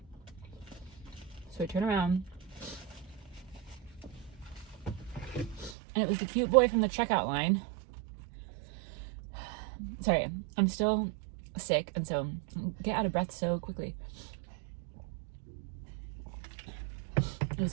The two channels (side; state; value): left; drops out; at 5.8 s